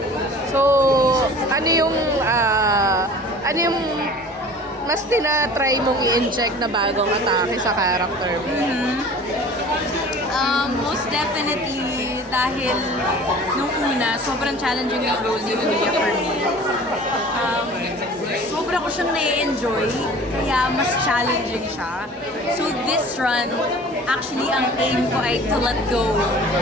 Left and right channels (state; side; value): normal; both; correlation 0.44